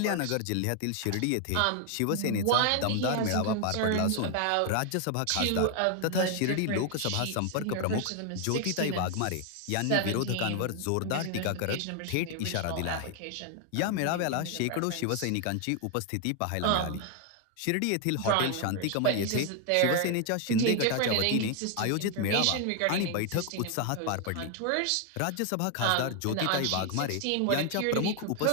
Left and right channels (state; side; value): different; both; correlation 0.00